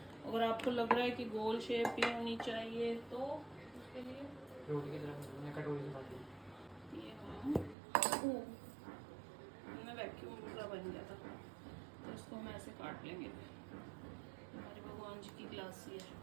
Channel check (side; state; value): left; drops out; at 7.8 s